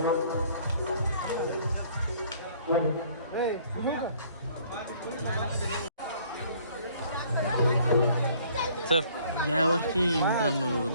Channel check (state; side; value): inverted; both; correlation -0.58